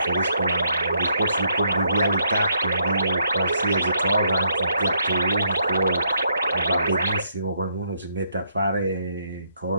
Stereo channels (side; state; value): both; inverted; correlation -0.74